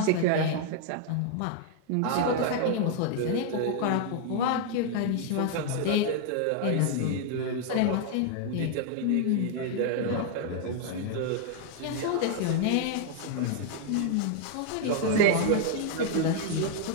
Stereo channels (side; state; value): both; different; correlation 0.00